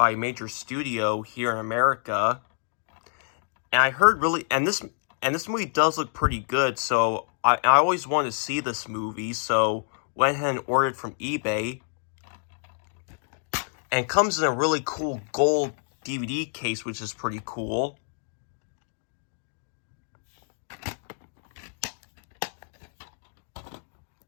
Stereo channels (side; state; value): right; silent; 60 dB below the other